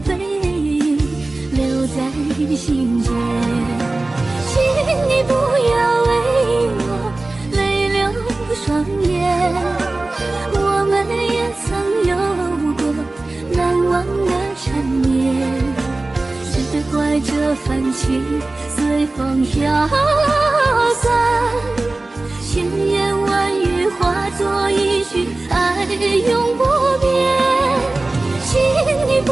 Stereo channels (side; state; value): left; quieter; 3.0 dB